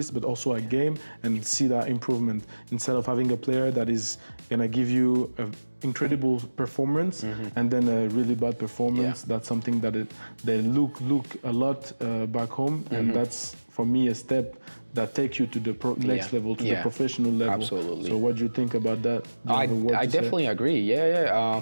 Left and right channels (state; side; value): inverted; both; correlation -1.00